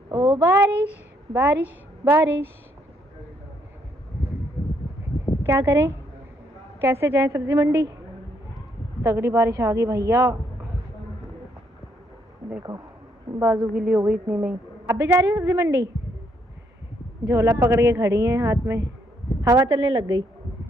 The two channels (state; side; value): normal; both; correlation 0.72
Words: ओ बारिश बारिश बारिश। क्या करें, कैसे जाएं सब्जी मंडी? तगड़ी बारिश आ गई भैया, देखो बाजू गीली हो गई इतनी में ही। अब भी जा रही हो सब्जी मंडी? झोला पकड़ के खड़ी हैं हाथ में, हवा चलने लग गई।